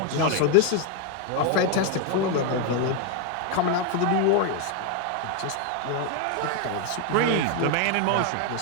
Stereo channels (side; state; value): both; different; correlation 0.01